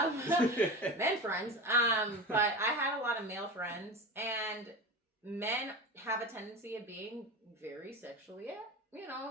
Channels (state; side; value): normal; both; correlation 0.27